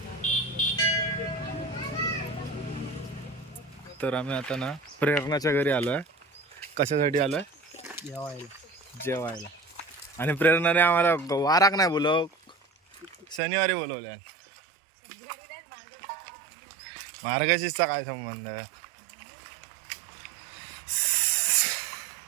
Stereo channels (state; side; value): drops out; left; at 13.4 s